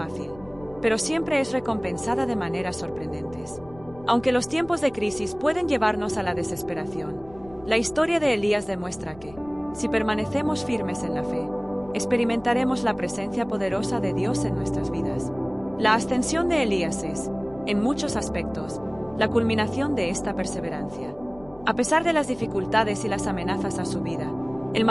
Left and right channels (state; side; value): noise; left; rumble, 21 dB below the sound